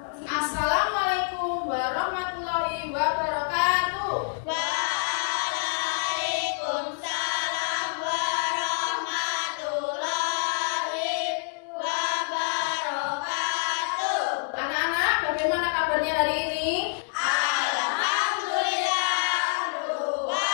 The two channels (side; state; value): right; silent; digital silence